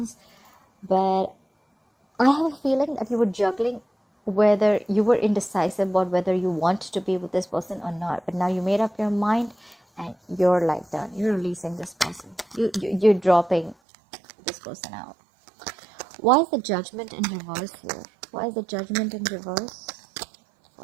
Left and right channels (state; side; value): drops out; left; at 13.8 s